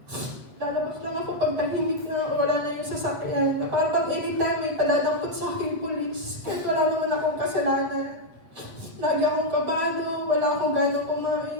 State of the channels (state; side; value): late; left; 8.3 ms